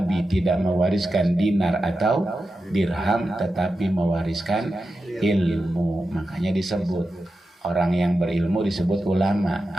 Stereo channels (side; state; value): both; normal; correlation 0.90